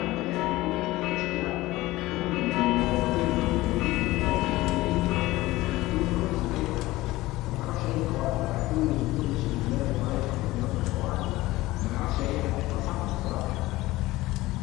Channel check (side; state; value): right; quieter; 18.4 dB